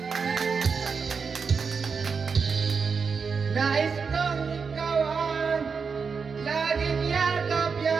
Nais kong ikaw ang laging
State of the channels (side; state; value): left; quieter; 5.5 dB